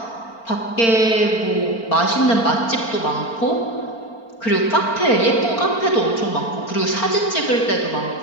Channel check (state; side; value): late; right; 4.4 ms